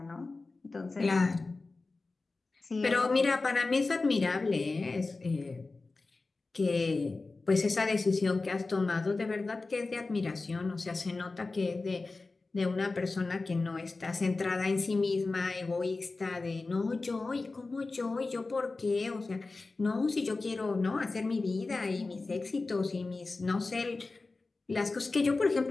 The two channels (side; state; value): right; quieter; 3.6 dB